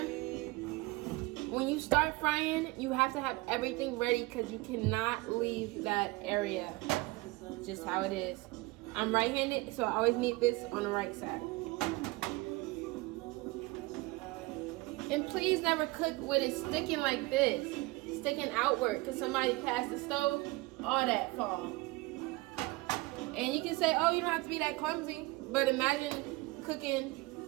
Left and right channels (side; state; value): left; quieter; 22.2 dB